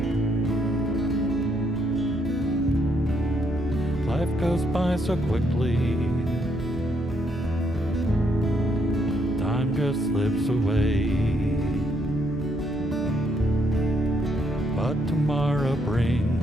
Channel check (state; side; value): noise; left; hum, 15 dB below the sound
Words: Life goes by so quickly, time just slips away, but tomorrow brings